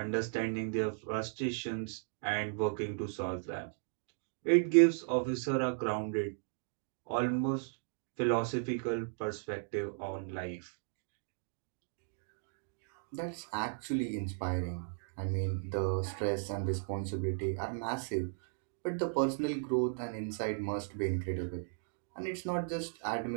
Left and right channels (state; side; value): silent; left; digital silence